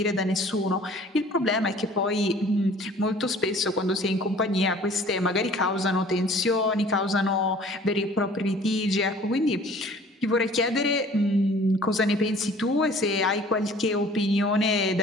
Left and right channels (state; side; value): normal; both; correlation 0.50